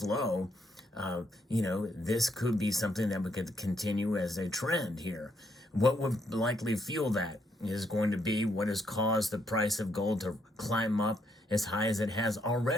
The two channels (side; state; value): both; normal; correlation 0.74